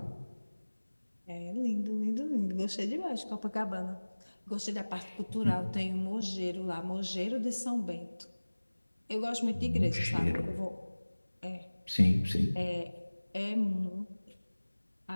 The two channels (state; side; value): inverted; both; correlation -1.00